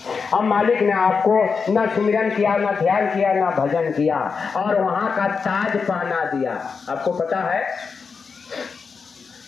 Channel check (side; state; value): right; quieter; 5.3 dB